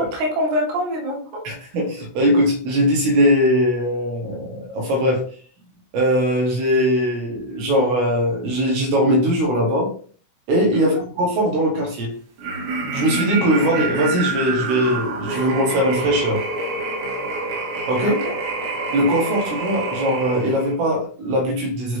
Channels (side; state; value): left; late; 16 ms